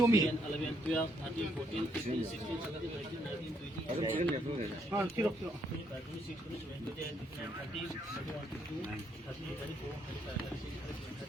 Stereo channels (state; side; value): normal; both; correlation 0.73